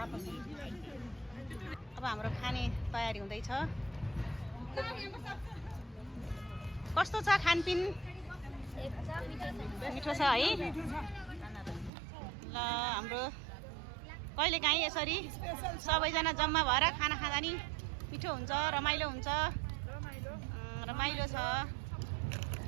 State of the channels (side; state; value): left; drops out; at 11.9 s